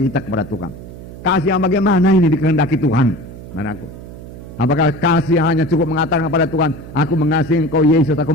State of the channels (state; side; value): noise; right; hum, 14 dB below the sound